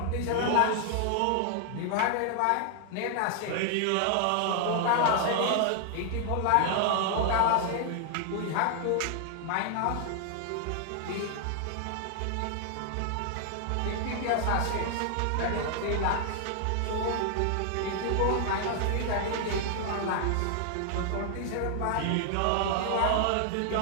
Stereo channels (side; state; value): both; different; correlation 0.00